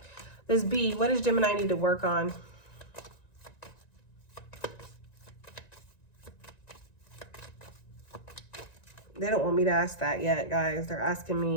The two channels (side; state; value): right; late; 1.9 ms